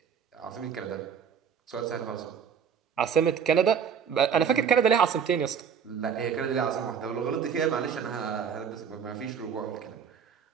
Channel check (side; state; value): left; quieter; 7.3 dB